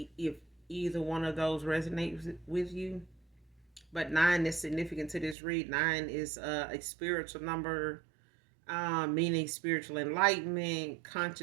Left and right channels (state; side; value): drops out; left; at 5.4 s